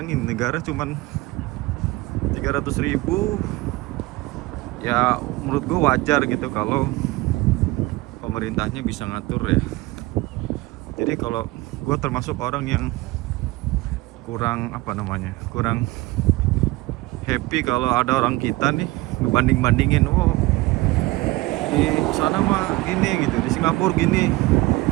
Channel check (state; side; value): quieter; left; 20.6 dB